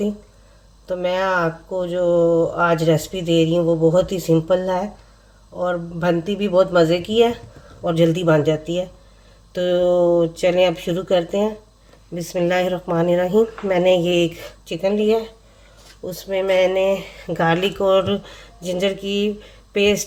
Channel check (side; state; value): both; identical; correlation 1.00